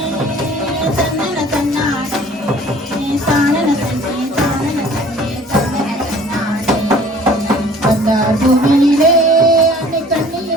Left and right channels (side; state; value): both; normal; correlation 0.50